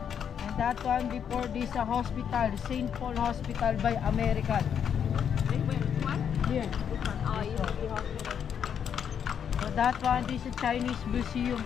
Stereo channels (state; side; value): quieter; right; 8.1 dB